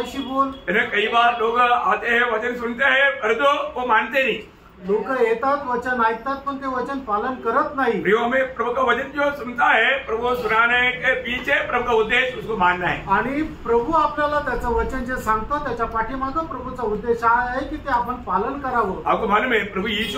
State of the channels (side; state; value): both; identical; correlation 1.00